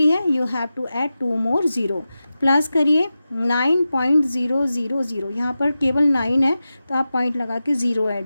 है. You have to add 2 more 0. Plus करिए 9.000. यहाँ पर केवल 9 है तो आप पॉइंट लगा के 0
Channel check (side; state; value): both; inverted; correlation -0.93